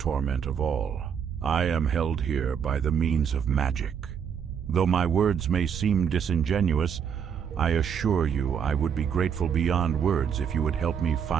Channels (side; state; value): left; quieter; 7.7 dB